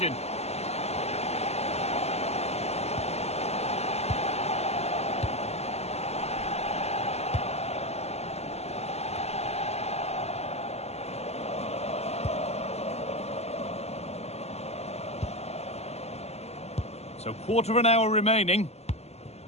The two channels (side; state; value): right; late; 0.30 ms